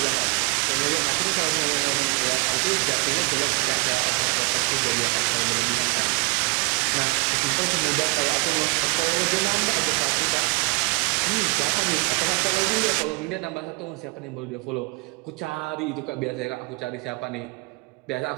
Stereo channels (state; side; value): quieter; left; 29.6 dB